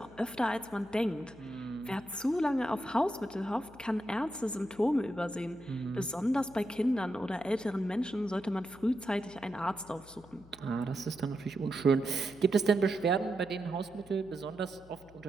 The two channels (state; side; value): noise; left; hum, 23 dB below the sound